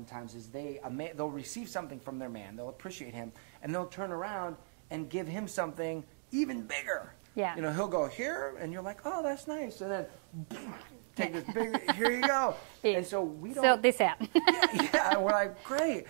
is they'll receive something from their man, they'll appreciate him, and they'll turn around and give him something even bigger. Yeah. He'll go here, and you're like, oh, that's nice, and then take this big, here you go. And so we don't... Sort this out. yeah, and we're like, great.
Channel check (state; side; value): silent; left; digital silence